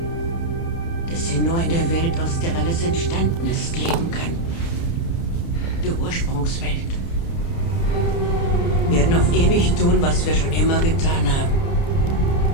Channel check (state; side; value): late; right; 30 ms